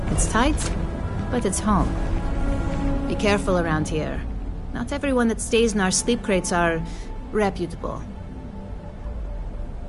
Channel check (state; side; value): identical; both; correlation 1.00